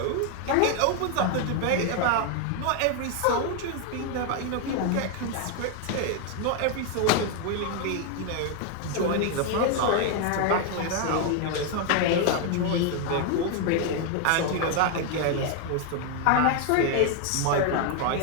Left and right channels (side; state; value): both; different; correlation 0.01